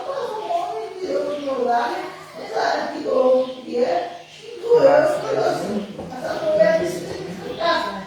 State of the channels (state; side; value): identical; both; correlation 1.00